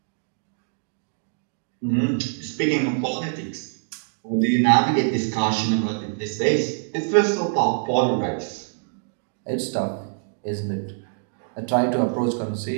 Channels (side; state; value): left; silent; digital silence